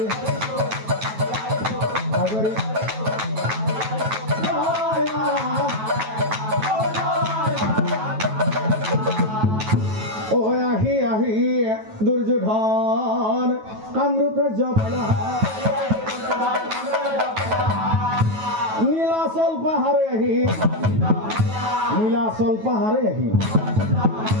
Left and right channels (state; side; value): late; left; 9.2 ms